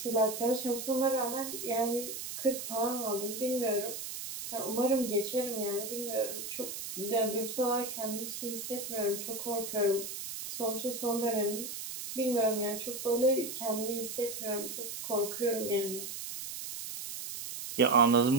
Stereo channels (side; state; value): right; noise; hiss, 7 dB below the sound